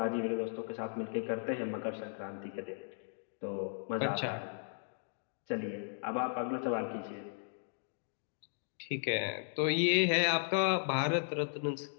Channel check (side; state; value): right; silent; digital silence